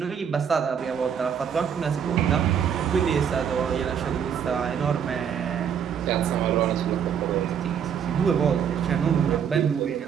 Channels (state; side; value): quieter; left; 7.9 dB